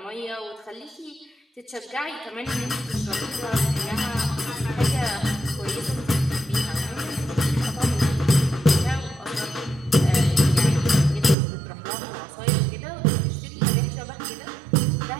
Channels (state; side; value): drops out; left; at 11.4 s